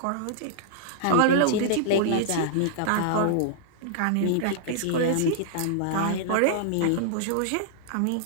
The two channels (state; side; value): different; both; correlation -0.01